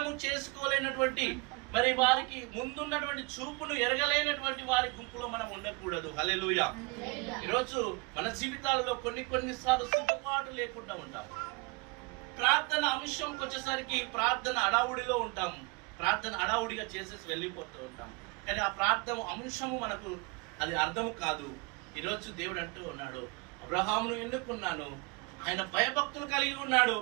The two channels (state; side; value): quieter; left; 29.5 dB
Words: చేసుకోలేనటువంటి మరి వారికి ముందున్నటువంటి చూపును ఎరగలేనటువంటి వారి గుంపులో మనం ఉండకూడదు. హల్లెలూయా. ఈరోజు మన జీవితాలలో కొన్నిసార్లు సిద్ధపాటు లేకుండా ఉంటాం. ప్రార్థన అంశంకి వచ్చేసరికి ప్రార్థన అడావుడిలో ఉంటాం. ప్రార్థన అడావుడిగా చేసేసి వెళ్ళిపోతూ ఉంటాం. కానీ ఆ ప్రార్థన అంశము మనకు అది అర్థం కాదు. ఈరోజు దేవుడు అంటూ ఉన్నాడు, అబ్రహామును ఎన్నుకున్నాను, ఆయన భయభక్తులు కలిగి ఉన్నాడు,